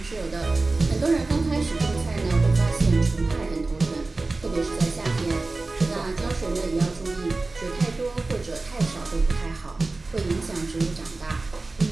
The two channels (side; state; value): left; quieter; 3.4 dB